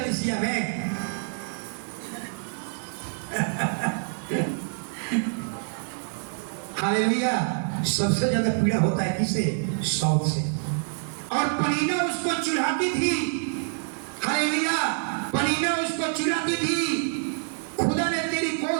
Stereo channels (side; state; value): left; silent; 59 dB below the other